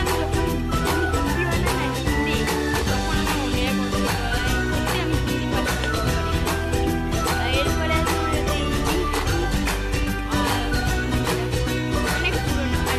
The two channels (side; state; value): both; identical; correlation 1.00